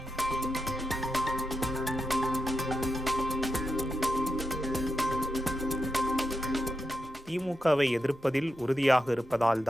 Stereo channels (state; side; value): normal; both; correlation 0.87